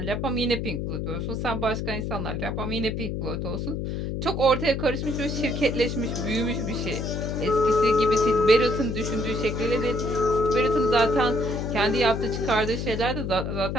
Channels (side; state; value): left; noise; hum, 3 dB below the sound